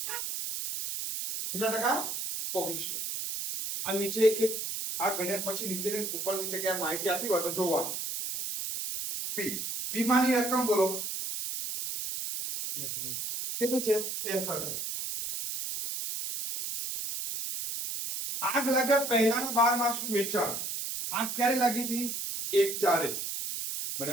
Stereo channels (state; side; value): noise; right; hiss, 4 dB below the sound